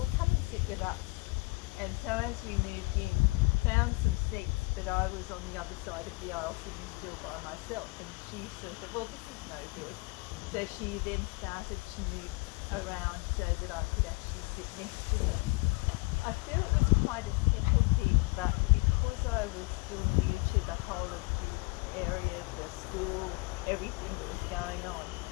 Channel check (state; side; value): quieter; right; 26.4 dB